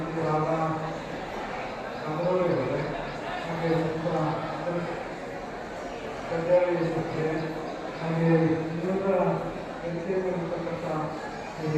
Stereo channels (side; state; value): both; identical; correlation 1.00